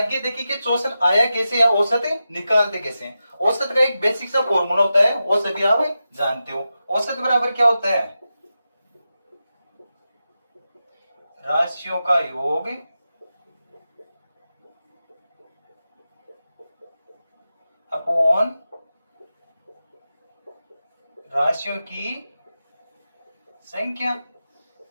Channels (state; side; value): inverted; both; correlation -0.91